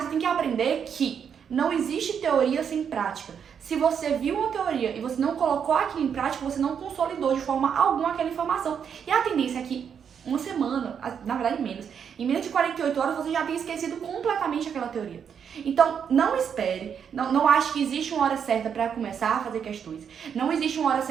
você tem que aprender que não existe teoria sem prática. Se você viu uma teoria e você não colocou aquilo em prática, você não consolidou de forma alguma aquela informação. E a tendência é que uma semana, na verdade menos, em menos de 48 horas você já tenha esquecido completamente aquela teoria. Então, não espere, não ache que existe uma hora certa para começar a fazer questões. Não existe uma hora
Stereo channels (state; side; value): quieter; left; 7.6 dB